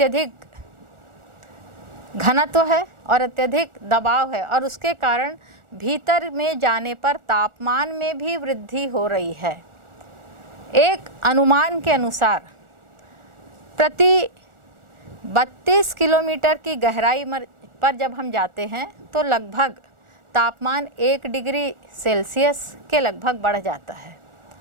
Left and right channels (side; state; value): left; late; 1.4 ms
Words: घनत्व है और अत्यधिक दबाव है और उसके कारण भीतर में जाने पर तापमान में भी वृद्धि हो रही है। एक अनुमान के अनुसार प्रति 32 किलोमीटर की गहराई पर जब हम जाते हैं तो लगभग तापमान 1 डिग्री सेल्सियस के लगभग बढ़ जाता है।